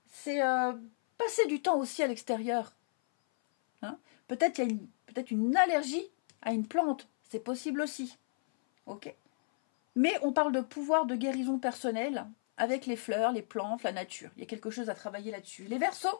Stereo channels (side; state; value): right; silent; 56 dB below the other